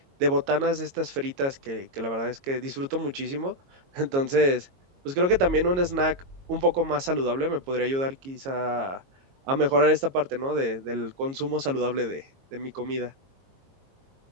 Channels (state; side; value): late; left; 22 ms